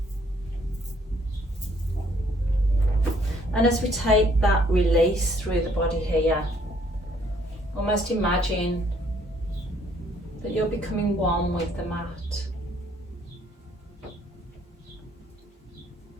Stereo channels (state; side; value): normal; both; correlation 0.64